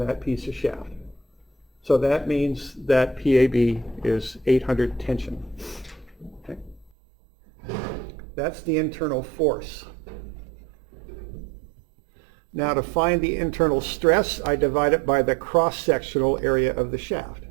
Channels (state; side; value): drops out; left; at 6.9 s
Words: piece of shaft. So that means that PAB is 800 tension. Okay? That's the internal force. Now to find the internal stress, I divide it by the cross-sectional area of the shaft.